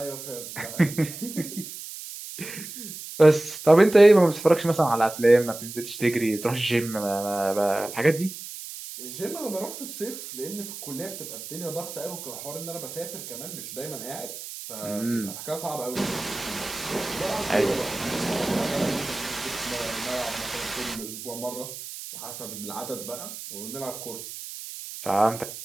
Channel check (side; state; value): right; noise; hiss, 11 dB below the sound